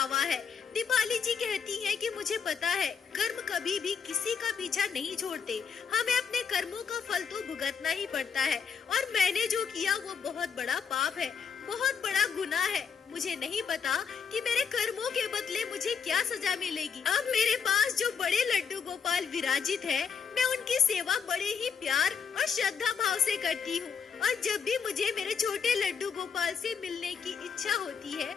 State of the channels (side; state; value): right; quieter; 6.5 dB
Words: है। दीपाली जी कहती हैं कि मुझे पता है कर्म कभी भी किसी का पीछा नहीं छोड़ते, हमें अपने कर्मों का फल तो भुगतना ही पड़ता है और मैंने जो किया वो बहुत बड़ा पाप है, बहुत बड़ा गुनाह है। मुझे नहीं पता कि मेरे कर्मों के बदले मुझे क्या सजा मिलेगी। अब मेरे पास जो बड़े लड्डू गोपाल विराजित है, मैं उनकी सेवा बड़े ही प्यार और श्रद्धा भाव से करती हूँ। और जब भी मुझे मेरे छोटे लड्डू गोपाल से मिलने की इच्छा होती है,